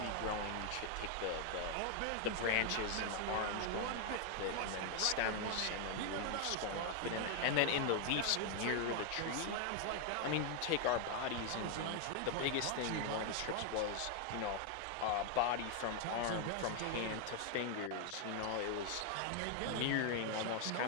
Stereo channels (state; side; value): different; both; correlation 0.00